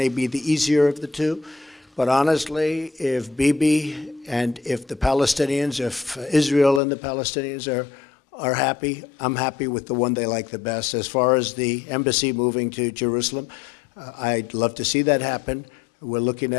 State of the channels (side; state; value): right; drops out; at 6.8 s